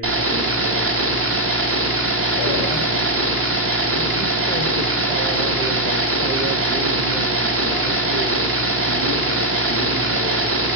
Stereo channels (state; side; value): normal; both; correlation 0.00